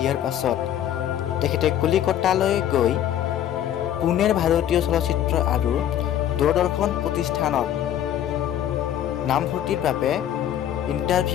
পাছত তেখেতে কলিকতালৈ গৈ পুনেৰ ভাৰতীয় চলচ্চিত্ৰ আৰু দূৰদৰ্শন প্ৰতিষ্ঠানত নামভৰ্তিৰ বাবে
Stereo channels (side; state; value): right; quieter; 10.9 dB